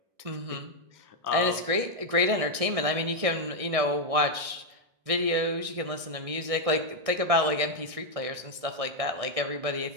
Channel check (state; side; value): late; left; 1.6 ms